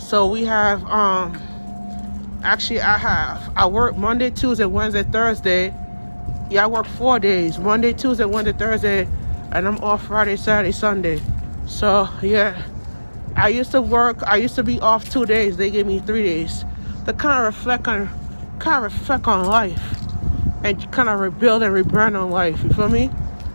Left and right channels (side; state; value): both; inverted; correlation -1.00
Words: we have I work Monday, Tuesday, Wednesday, Thursday. Yeah, I work 4 days. Monday, Tuesday, Wednesday, Thursday, and I'm off Friday, Saturday, Sunday. So yeah, I used to be off 2 days. They gave me 3 days to kind of reflect on life and kind of rebuild and rebrand on life. You feel me?